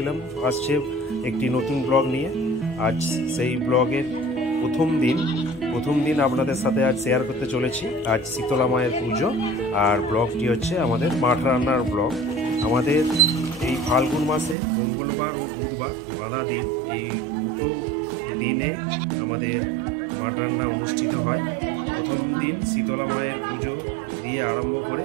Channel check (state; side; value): drops out; left; at 14.6 s